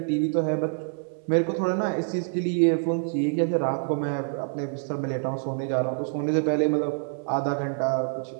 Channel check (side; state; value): left; silent; 61 dB below the other